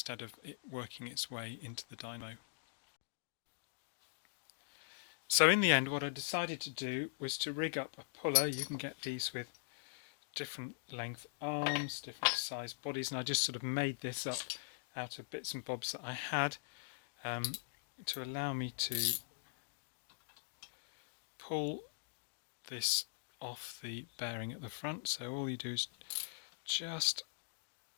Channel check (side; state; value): right; silent; digital silence